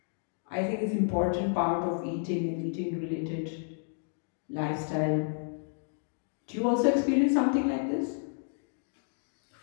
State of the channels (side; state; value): right; silent; digital silence